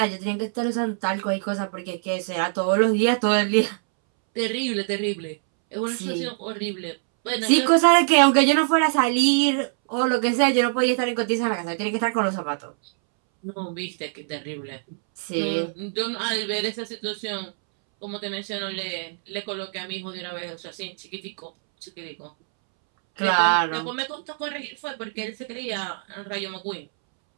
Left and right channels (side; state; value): left; silent; 62 dB below the other